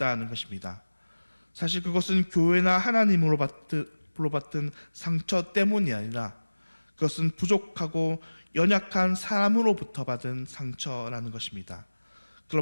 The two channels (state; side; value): inverted; both; correlation -1.00